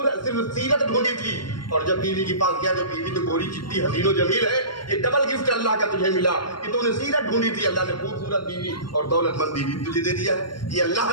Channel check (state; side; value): late; right; 0.72 ms